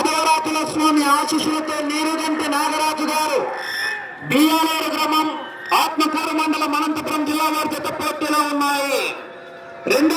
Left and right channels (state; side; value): identical; both; correlation 1.00